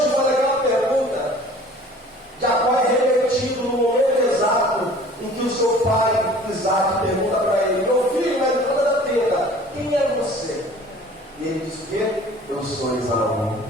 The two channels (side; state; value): both; normal; correlation 0.48